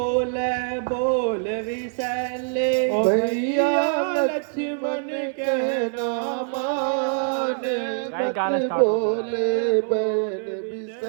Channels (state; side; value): silent; left; 59 dB below the other